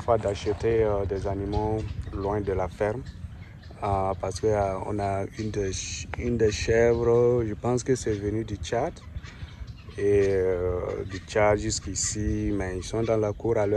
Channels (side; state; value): both; identical; correlation 1.00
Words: d'acheter des animaux loin de la ferme. Parce qu'on a une des chèvres, je pense que c'est venu du Tchad. Et du Tchad jusqu'ici, mais ils sont dans la cour à